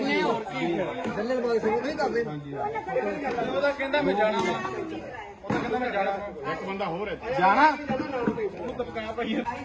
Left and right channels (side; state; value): both; identical; correlation 1.00